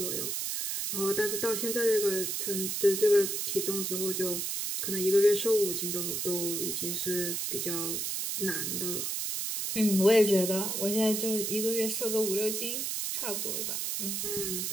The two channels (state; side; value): noise; right; hiss, 1 dB below the sound